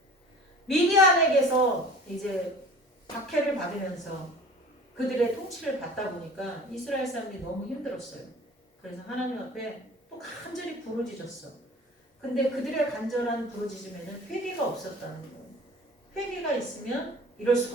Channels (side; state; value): both; normal; correlation 0.43